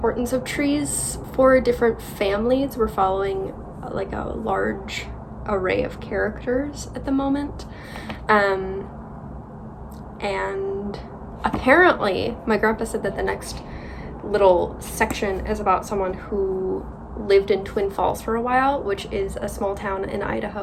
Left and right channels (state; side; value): identical; both; correlation 1.00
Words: of trees for different families. We're following a large array of characters at the moment, and apparently my grandpa said that the next little section is about someone who lived in Twin Falls for a while, which is a small town in